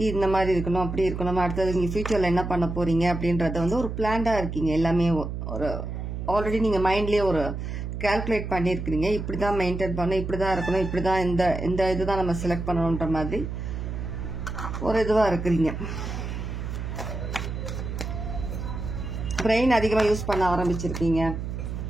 இந்த மாதிரி இருக்கணும், அப்படி இருக்கணும், அடுத்தது நீங்கள் ஃபியூச்சரில் என்ன பண்ண போகிறீங்க அப்படின்றத வந்து ஒரு பிளான்டாக இருக்கீங்க. எல்லாமே ஒரு ஆல்ரெடி நீங்கள் மைண்ட்லேயே ஒரு கால்குலேட் பண்ணியிருக்கிறீங்க. இப்படி தான் மெயின்டைன் பண்ணணும், இப்படி தான் இருக்கணும், இப்படி தான் இந்த இதுதான் நம்ம செலக்ட் பண்ணணுன்ற மாதிரி ஒரு இதுவாக இருக்கிறீங்க. பிரெயின் அதிகமாக யூஸ் பண்ண ஆரம்பிச்சிருக்கீங்க.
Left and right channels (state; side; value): noise; right; hum, 5 dB below the sound